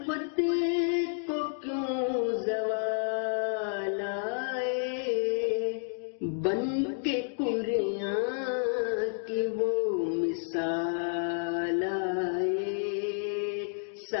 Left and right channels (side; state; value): right; silent; digital silence